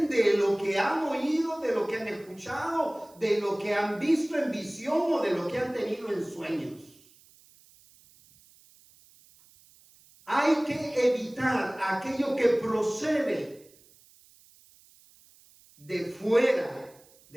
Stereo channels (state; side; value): noise; right; hiss, 28 dB below the sound